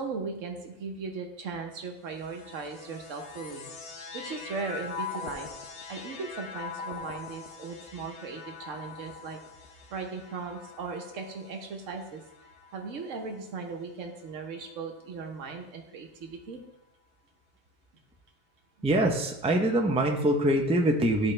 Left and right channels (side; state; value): both; normal; correlation 0.39